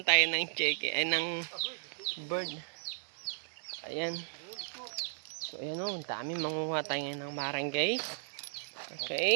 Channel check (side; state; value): left; silent; digital silence